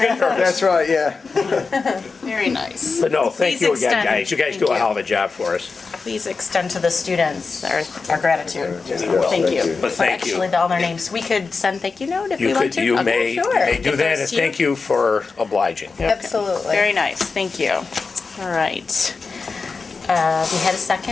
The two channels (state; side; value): quieter; right; 4.4 dB